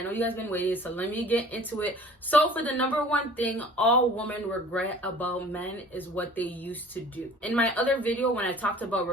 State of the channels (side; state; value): both; normal; correlation 0.48